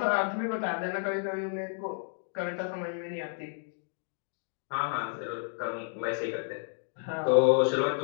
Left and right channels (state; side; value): silent; right; 57 dB below the other